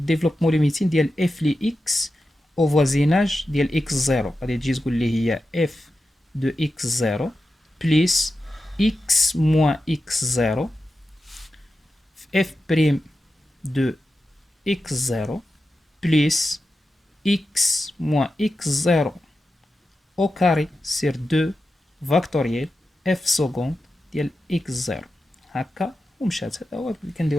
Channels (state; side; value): normal; both; correlation 0.91